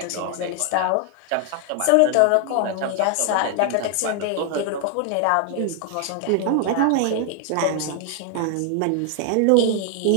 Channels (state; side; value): different; both; correlation 0.00